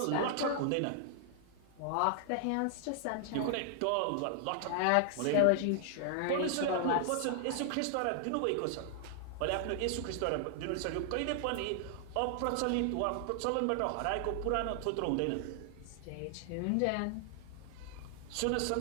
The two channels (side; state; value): both; different; correlation 0.00